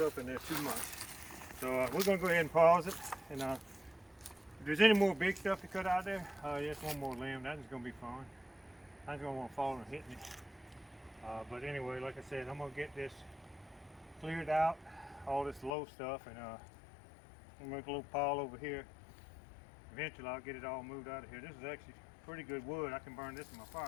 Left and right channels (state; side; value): drops out; right; at 15.7 s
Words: up in there too much. So we're gonna go ahead and pause it. And if there's any more big stuff to cut out there, just one more limb. That's gonna be fun. I just gonna want to fall and hit me. But anyway, like I said, I'm gonna get this cleared out, all this low stuff, and I'm gonna make a little pile over here. Eventually, I'll get it all moved out of here. This is actually pretty good wood. I can burn this in my